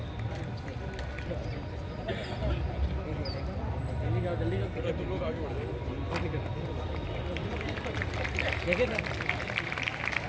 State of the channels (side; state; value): both; identical; correlation 1.00